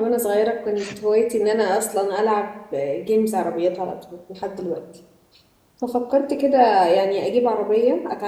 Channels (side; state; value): both; identical; correlation 1.00